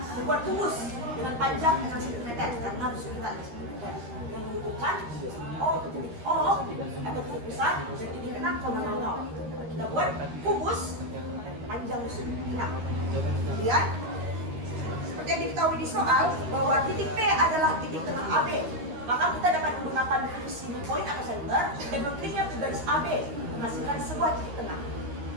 kubus dengan panjang 6 cm karena harus kita 6 cm yang menentukan O atau titik pusat dan titik 6,00. Kita buat kubus dan panjang rusuk 6. Kemudian seperti seperti yang diketahui di soal bahwa titik P adalah titik tengah AB. Maka kita dapat menggunakan fungsi point atau center dan mengkliknya ke garis AB menghasilkan sebuah titik tengah.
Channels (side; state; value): left; late; 13 ms